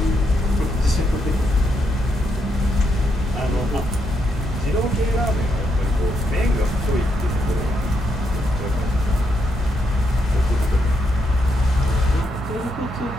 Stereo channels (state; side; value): normal; both; correlation 0.79